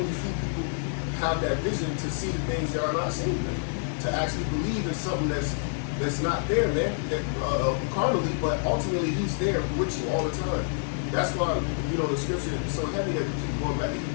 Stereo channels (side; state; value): right; silent; 60 dB below the other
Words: few people have that vision to see the things that are not seen, man. To actually believe in something that's not there, man. That carnally, but ultimately He's there with you all the time. That's why, the scripture is so heavy that we keep going back to